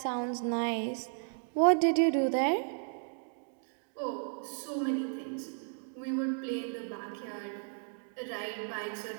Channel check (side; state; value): left; silent; 55 dB below the other